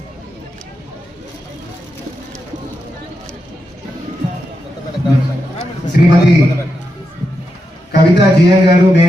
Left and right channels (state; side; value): normal; both; correlation 0.86